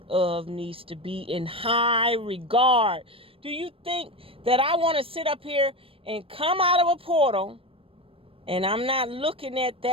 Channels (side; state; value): left; late; 0.27 ms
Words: of needs to be in high regard. Do you think that I want to sit up here and come out of a portal and I'm not looking at